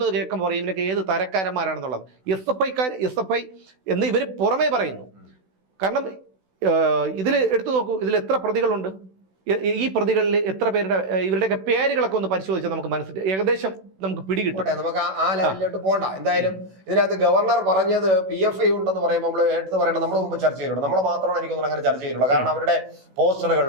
കേൾക്കുമ്പോൾ പറയും ഇവനൊക്കെ ഏത് തരക്കാരന്മാരാണെന്നുള്ളത്. SFI എന്ന് ഇവർ പുറമേ പറയുന്നു. കാരണം ഇതിൽ എടുത്തു നോക്കൂ, ഇതിൽ എത്ര പ്രതികളുണ്ട്? ഈ പ്രതികളിൽ എത്ര പേരുടെ ഇവരുടെയൊക്കെ പേരുകളൊക്കെ ഒന്ന് പരിശോധിച്ചാൽ നമുക്ക് മനസ്സിലായി ഏകദേശം നമുക്ക് പിടികിട്ടും. നമുക്ക് ആ ലെവലിലോട്ട് പോകണ്ട. എന്തായാലും ഇതിനകത്ത് ഗവർണർ പറഞ്ഞത് PFI ഉണ്ടെന്ന് പറയുമ്പോൾ നമ്മൾ എടുത്ത് പറയണം. നമ്മൾ മുമ്പ് ചർച്ച ചെയ്തിട്ടുണ്ട്. നമ്മൾ മാത്രമാണ് എനിക്കൊന്നും അങ്ങനെ ചർച്ച ചെയ്തിട്ടുള്ളത്. കാരണം അവരുടെ പോസ്റ്ററുകൾ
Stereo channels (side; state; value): left; late; 16 ms